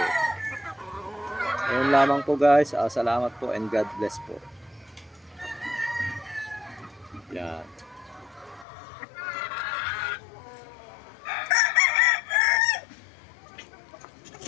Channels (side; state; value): right; drops out; at 8.7 s